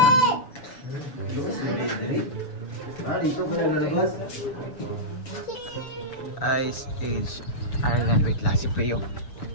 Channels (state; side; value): late; right; 6.9 ms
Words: Ice Age Ireland. Wait, last si Pleo.